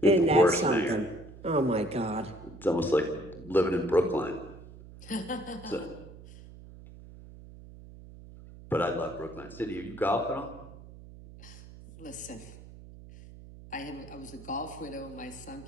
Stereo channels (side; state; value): right; noise; hum, 17 dB below the sound